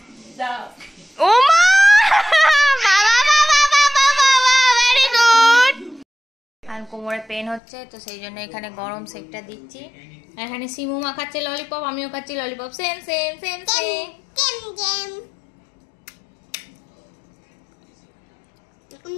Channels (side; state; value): right; drops out; at 7.6 s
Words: দাও। ও মা, বাবা বাবা বাবা বাবা, ভেরি গুড। আর কোমরে পেন হচ্ছে, তো সেই জন্য এখানে গরম সেকটা দিচ্ছি। এখানে সিমু মা খাচ্ছে ললিপপ, আমিও খাচ্ছি lollipop. Same same same same.